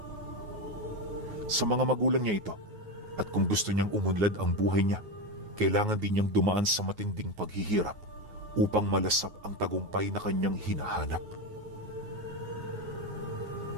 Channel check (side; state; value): left; late; 9.5 ms